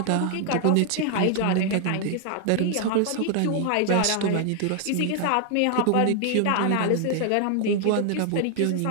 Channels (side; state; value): both; different; correlation 0.00